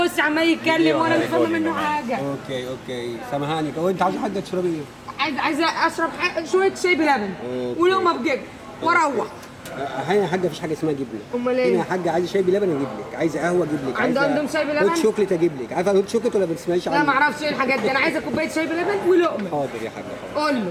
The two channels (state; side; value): identical; both; correlation 1.00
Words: عمال يتكلم وانا مش فاهمه منه حاجه. اوكي سامحاني. هو انت عايزه حاجه تشربي ايه؟ عايزه اشرب شويه شاي بلبن ولقمه بجبن واروح. هنا يا حاجه مفيش حاجه اسمها جبنه. امال ايه؟ هنا يا حاجه عايزه شاي بلبن اجيب لك، عايزه قهوه اجيب لك، عندهم شاي بلبن؟ هوت شوكليت اجيب لك. عارفه هوت شوكليت ولا ما بتسمعيش عنه؟ لا ما اعرفش ايه الحاجات دي، انا عايزه كوبايه شاي بلبن ولقمه. حاضر يا حاجه. قول